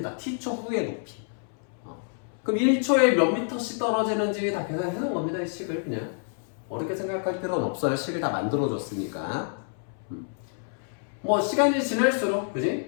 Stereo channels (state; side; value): silent; right; 60 dB below the other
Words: t초 후의 높이. 그럼 1초에 몇 미터씩 떨어지는지 다 계산해 놓은 겁니다. 이 식을 그냥 어렵게 생각할 필요는 없어요. 식을 다 만들어줬으니까. 뭐 시간이 지날수록,